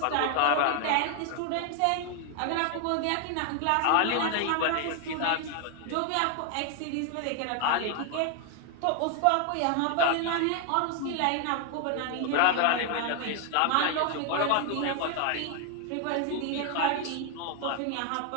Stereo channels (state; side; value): different; both; correlation 0.00